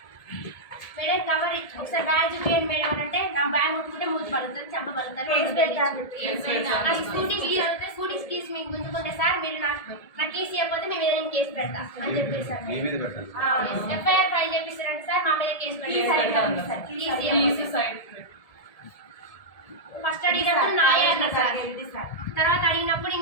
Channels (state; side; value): late; right; 1.7 ms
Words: మేడం కవర్ ఒకసారి బ్యాగ్ చూపించండి మేడం అని అంటే నా బ్యాగ్ ముట్టుకుంటే మూతి పలుకుతుంది చెంప పలుకుతుంది స్కూటీ కీస్ అవుతుంది స్కూటీ కీస్ మీకు గుంజుకుంటే సార్ మీరు నా కీస్ ఇవ్వకపోతే మేము ఏదైనా కేసు పెడతా అని చెప్పేసి సార్ ఎఫ్ఐఆర్ ఫైల్ చేపిస్తారంటే సార్ మా మీద కేసు పెడతారు ఫస్ట్ అడిగినప్పుడు నాయే అన్నారు సార్ తర్వాత అడిగినప్పుడు